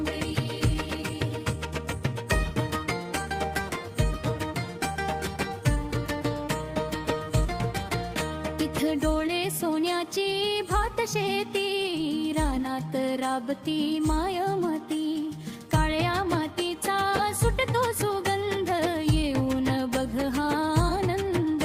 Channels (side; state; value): both; identical; correlation 1.00